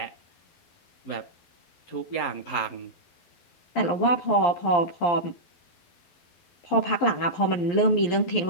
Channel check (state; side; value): late; right; 11 ms